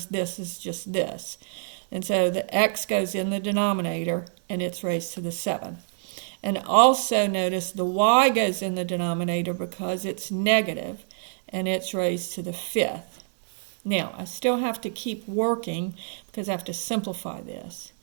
this is just this. And so the x goes in the denominator, and it's raised to the 7th. And also notice the y goes in the denominator because it's negative, and it's raised to the 5th. Now, I still have to keep working because I have to simplify this.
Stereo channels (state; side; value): silent; left; digital silence